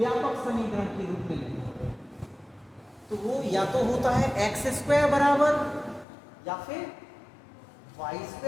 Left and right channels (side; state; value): right; drops out; at 6.1 s